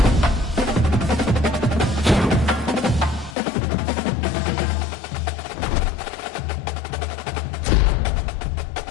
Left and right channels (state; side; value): drops out; right; at 3.4 s